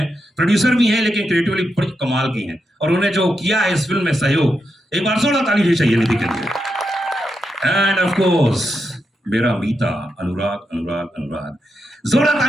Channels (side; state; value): both; normal; correlation 0.85